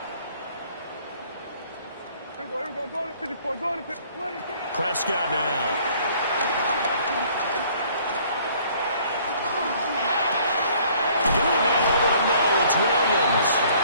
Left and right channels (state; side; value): inverted; both; correlation -0.58